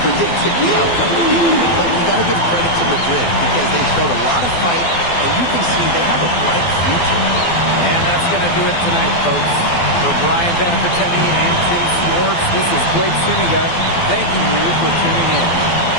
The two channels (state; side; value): late; right; 12 ms